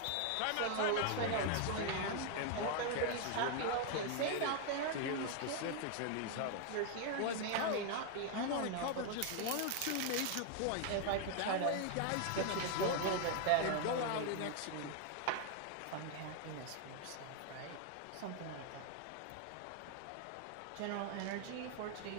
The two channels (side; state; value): both; different; correlation 0.00